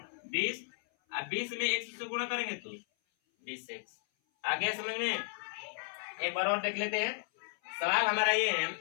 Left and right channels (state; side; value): silent; right; 55 dB below the other